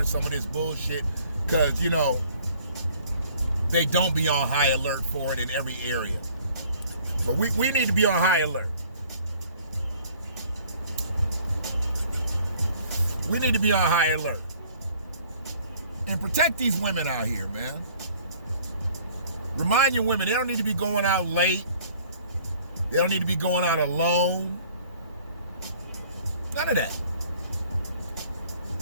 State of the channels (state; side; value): inverted; both; correlation -0.55